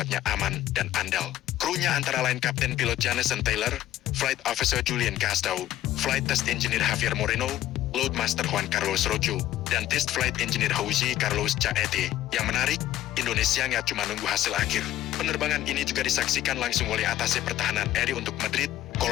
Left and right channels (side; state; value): right; quieter; 13.5 dB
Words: aman dan andal. Krunya antara lain Kapten Pilot Jameson Taylor, Flight Officer Julian Castro, Flight Test Engineer Javier Moreno, Loadmaster Juan Carlos Rojo, dan Test Flight Engineer Jose Carlos Chaete. Yang menarik, Indonesia nggak cuma nunggu hasil akhir. Penerbangan ini juga disaksikan langsung oleh Atase Pertahanan RI untuk Madrid,